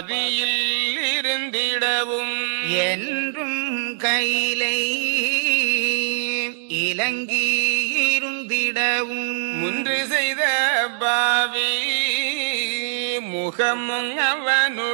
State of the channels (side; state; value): left; silent; digital silence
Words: இருந்திடவும் என்றும் கையிலை இலங்கி இருந்திடவும் முன்று செய்த பாவி முகமும்